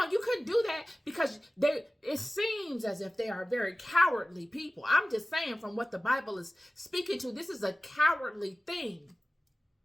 you couldn't do that because it seems as if they are very cowardly people. I'm just saying from what the Bible is speaking to, this is a cowardly thing.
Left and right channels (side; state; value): both; normal; correlation 0.97